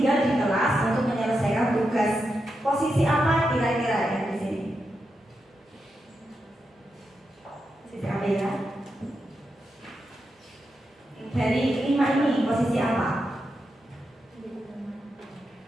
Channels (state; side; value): normal; both; correlation 0.86